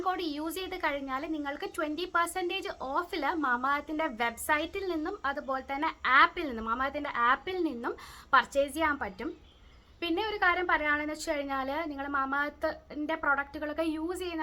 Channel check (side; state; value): both; identical; correlation 1.00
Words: കോഡ് യൂസ് ചെയ്ത് കഴിഞ്ഞാൽ നിങ്ങൾക്ക് 20% ഓഫിൽ മാമാഅർത്തിൻ്റെ വെബ്സൈറ്റിൽ നിന്നും അതുപോലെ തന്നെ മാമാഅർത്തിൻ്റെ ആപ്പിൽ നിന്നും പർച്ചേസ് ചെയ്യാൻ പറ്റും. പിന്നെ ഒരു കാര്യം പറയുകയാണെന്ന് വെച്ച് കഴിഞ്ഞാൽ, നിങ്ങൾ മാമാഅർത്തിൻ്റെ പ്രൊഡക്റ്റുകളൊക്കെ യൂസ്